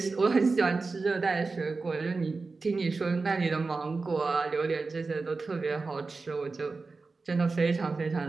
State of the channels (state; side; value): quieter; left; 4.0 dB